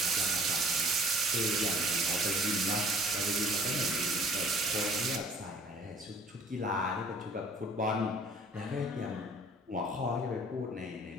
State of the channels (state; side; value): normal; both; correlation 0.54